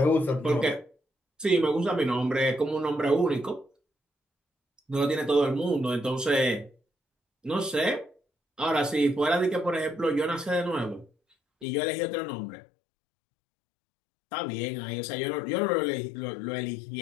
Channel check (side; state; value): right; drops out; at 11.7 s